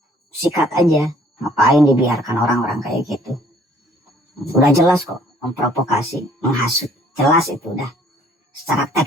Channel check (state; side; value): normal; both; correlation 0.58